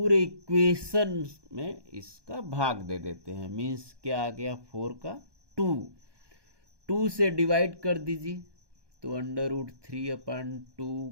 इक्वेशन में इसका भाग दे देते हैं। मीन्स क्या आ गया, 4 का 2 से डिवाइड कर दीजिए, तो √3/2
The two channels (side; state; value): left; late; 1.2 ms